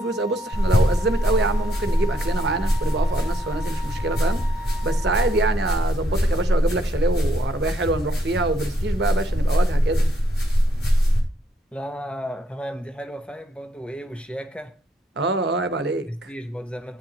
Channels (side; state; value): both; normal; correlation 0.73